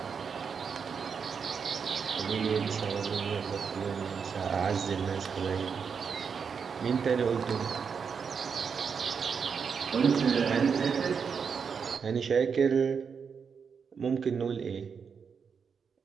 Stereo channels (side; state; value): left; quieter; 6.2 dB